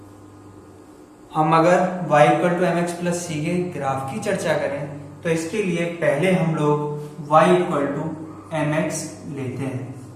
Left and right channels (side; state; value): both; identical; correlation 1.00